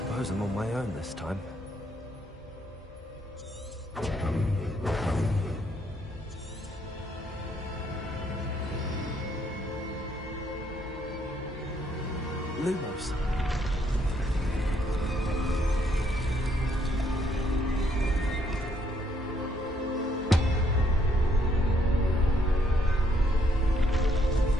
I'm on my own this time. Lumos!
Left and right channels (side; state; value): both; normal; correlation 0.71